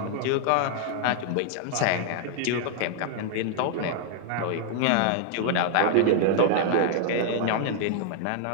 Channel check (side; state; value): both; different; correlation 0.00